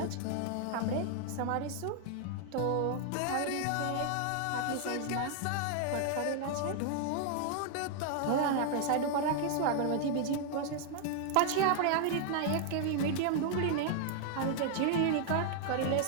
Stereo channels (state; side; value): different; both; correlation 0.00